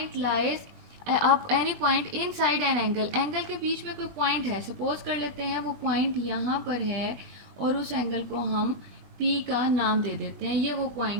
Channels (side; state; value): left; late; 21 ms